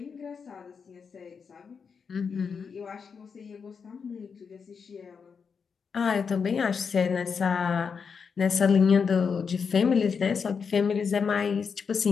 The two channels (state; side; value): quieter; right; 6.0 dB